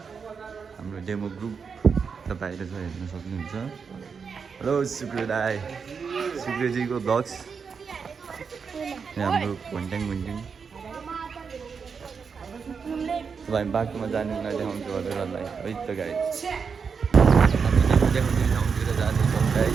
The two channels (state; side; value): quieter; left; 5.8 dB